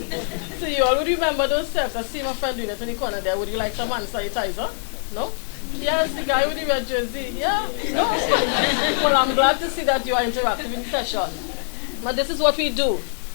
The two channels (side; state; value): right; silent; 60 dB below the other